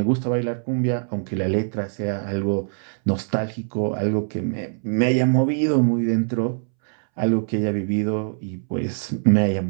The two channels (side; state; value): left; silent; 63 dB below the other